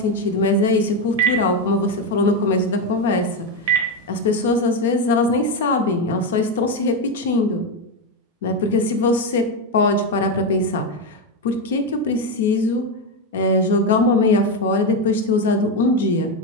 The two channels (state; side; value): normal; both; correlation 0.09